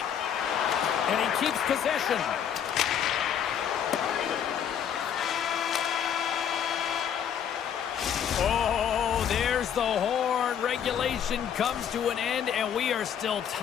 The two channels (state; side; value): quieter; right; 8.7 dB